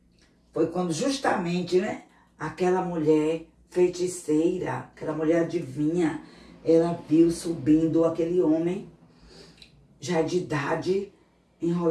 foi quando justamente, né, aquela mulher feiticeira, aquela mulher adivinha, ela viu subindo aquele homem, já de idade,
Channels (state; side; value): identical; both; correlation 1.00